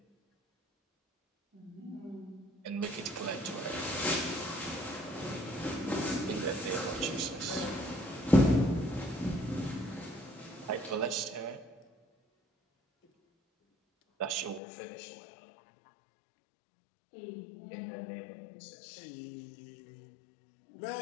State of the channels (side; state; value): right; drops out; at 14.6 s